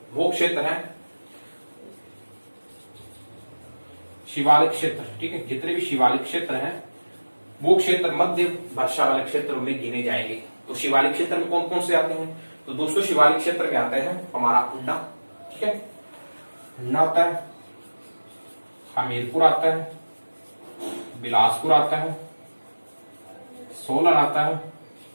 वो क्षेत्र हैं शिवालिक क्षेत्र। ठीक है, जितने भी शिवालिक क्षेत्र हैं वो क्षेत्र मध्य वर्षा वाले क्षेत्रों में गिने जाएंगे। तो शिवालिक क्षेत्र में कौन कौन से आते हैं? तो दोस्तों शिवालिक क्षेत्र में आते हैं हमारा उन्ना, ठीक है, उन्ना आता है, हमीरपुर आता है, बिलासपुर आता है, सोलन आता है,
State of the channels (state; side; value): inverted; both; correlation -1.00